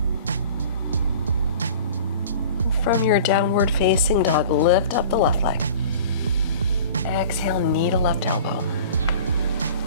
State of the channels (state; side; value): inverted; both; correlation -0.43